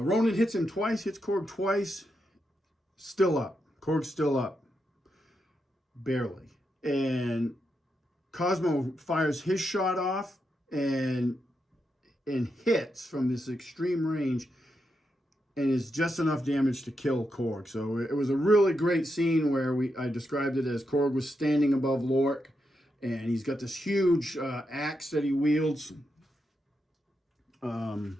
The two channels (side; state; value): both; normal; correlation 0.84